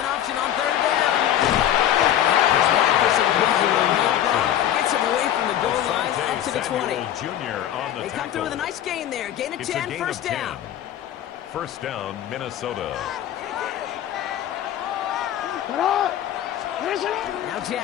an option on third down. Gets him away from the goal line up to the 20. They come through with a nice gain there. Gain of 10, first down. First down, Minnesota. Now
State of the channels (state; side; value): quieter; right; 11.3 dB